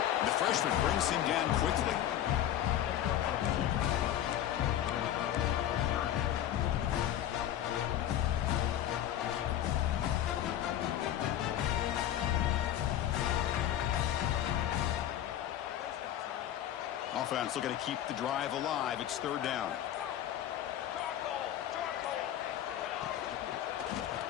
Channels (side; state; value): right; quieter; 11.5 dB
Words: And the freshman brings him down quickly. Offense looking to keep the drive alive. It's third down.